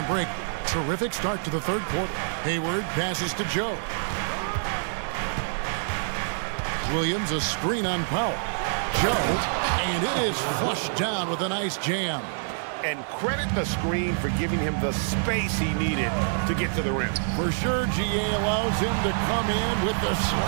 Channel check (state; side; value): silent; left; digital silence